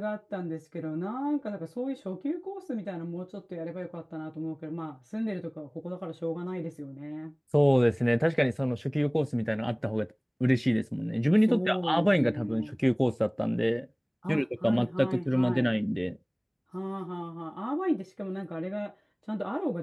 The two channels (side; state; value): both; identical; correlation 1.00